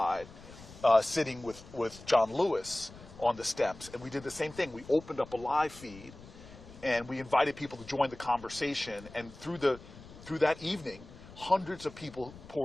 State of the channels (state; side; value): noise; left; rumble, 18 dB below the sound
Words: sitting with John Lewis on the steps. And we did the same thing. We opened up a live feed, and we invited people to join the conversation. And through that evening, hundreds of people